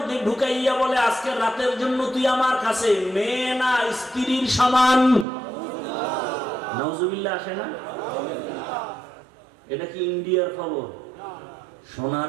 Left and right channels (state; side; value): drops out; left; at 5.2 s